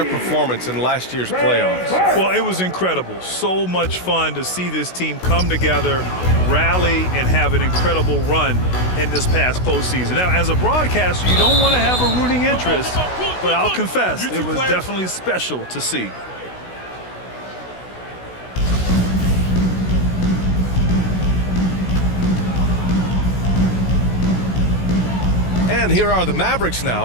performance in last year's playoffs? Well, it was incredible. So much fun to see this team come together, rally, and have an incredible run in this past postseason. Now, as a broadcaster, you don't want to have a rooting interest, but I'll confess, it was definitely special to see. And here are the Mavericks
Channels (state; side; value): late; right; 16 ms